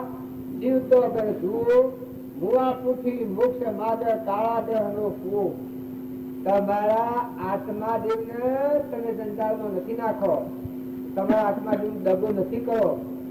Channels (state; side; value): identical; both; correlation 1.00